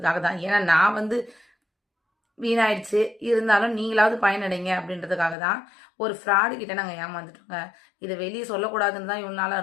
தான். ஏன்னா நான் வீணாயிடுச்சு, இருந்தாலும் நீங்களாவது பயனடைங்க அப்படின்றதுக்காக தான். ஒரு ஃப்ராடு கிட்ட நாங்கள் ஏமாந்துட்டோங்க. இதை வெளியே சொல்லக்கூடாதுன்னு தான் இவ்வளோ நாளாக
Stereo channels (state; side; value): drops out; right; at 5.4 s